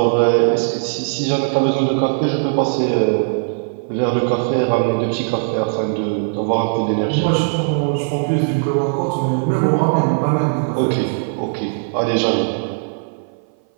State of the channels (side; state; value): left; silent; 58 dB below the other